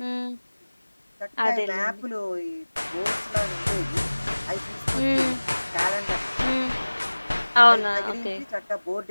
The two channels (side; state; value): both; inverted; correlation -1.00